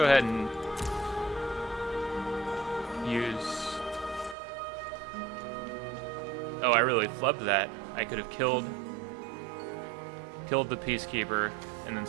ahead and use... Oh, I really flubbed that. I could have killed the Peacekeeper and then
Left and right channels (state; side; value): drops out; left; at 4.4 s